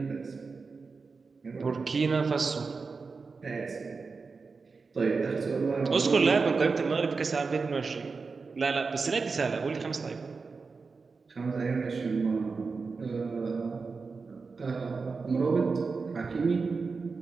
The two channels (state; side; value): quieter; left; 4.6 dB